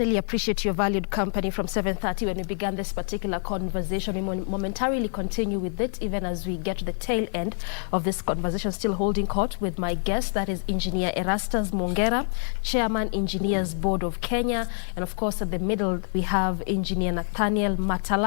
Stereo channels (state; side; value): silent; right; 59 dB below the other